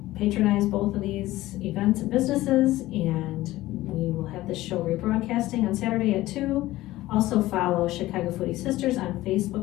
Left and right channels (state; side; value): quieter; right; 16.8 dB